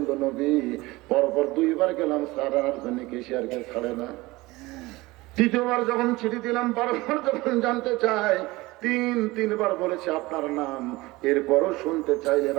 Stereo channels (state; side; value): quieter; left; 20.8 dB